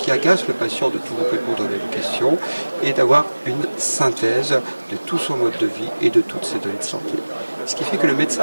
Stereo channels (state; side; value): inverted; both; correlation -1.00